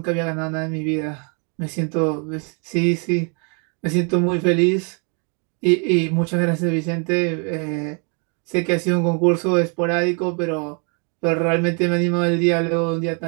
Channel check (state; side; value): quieter; left; 38.0 dB